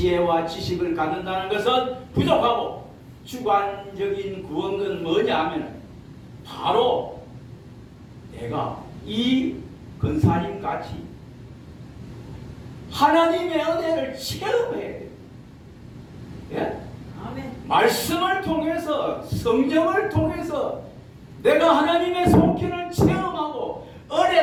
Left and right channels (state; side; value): identical; both; correlation 1.00